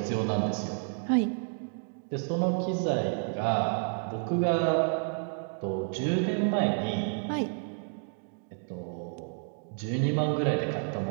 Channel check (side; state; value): left; silent; 58 dB below the other